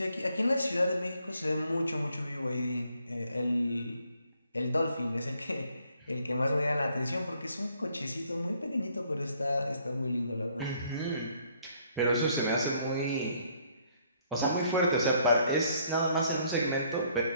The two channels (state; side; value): inverted; both; correlation -0.66